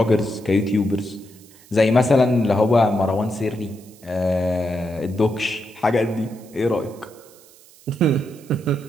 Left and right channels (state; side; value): noise; right; hiss, 25 dB below the sound